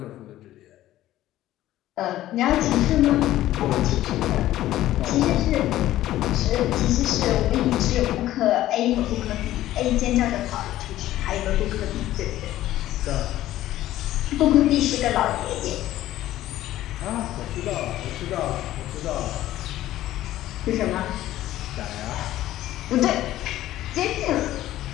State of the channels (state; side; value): quieter; right; 14.3 dB